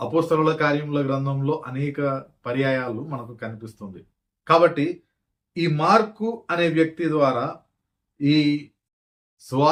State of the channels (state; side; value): identical; both; correlation 1.00